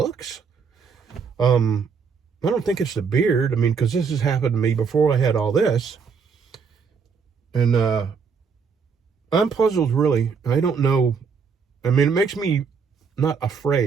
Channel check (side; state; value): left; quieter; 5.8 dB